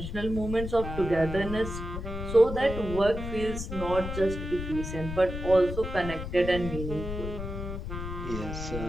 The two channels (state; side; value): noise; left; rumble, 6 dB below the sound